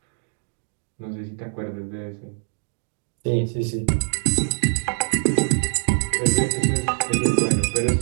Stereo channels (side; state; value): left; silent; digital silence